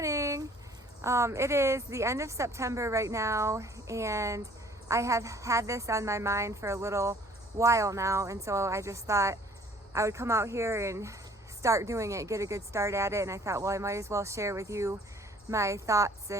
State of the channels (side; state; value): both; normal; correlation 0.55